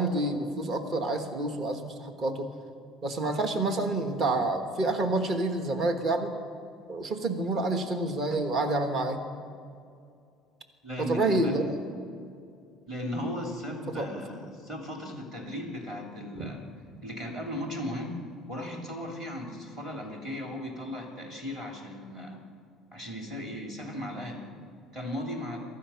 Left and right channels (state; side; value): normal; both; correlation 0.47